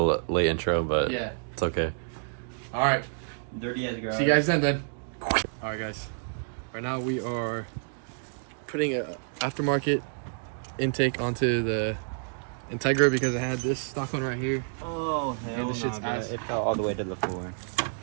intro, but yeah, it's okay. All right. Dirty as garage. See you guys then. All right, guys. Right now we are putting a aftermarket intake onto the Integra because I had this stock one right here. Oh, hell and the shit's ass. It fell all the way to the floor.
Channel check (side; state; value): left; silent; digital silence